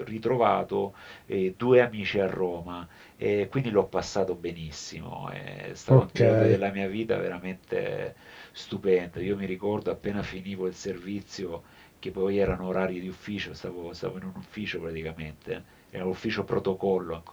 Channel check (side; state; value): both; identical; correlation 1.00